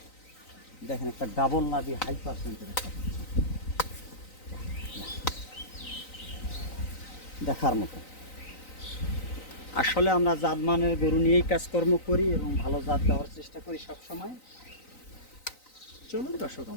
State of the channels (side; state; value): right; late; 3.9 ms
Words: দেখেন একটা ডাবল নাভি হাই পার্সেন্টের একটা বাচ্চা, দেখার মতো। আসলে আমরা জাতমানের গরু নিয়েই কাজকর্ম করি এবং ভালো জাত দেওয়ার চেষ্টা করি সব সময়। চলুন দর্শক